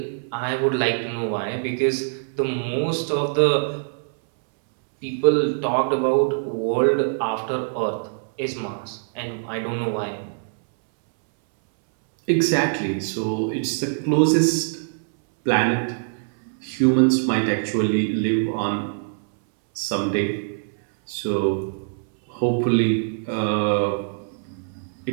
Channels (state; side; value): silent; left; 63 dB below the other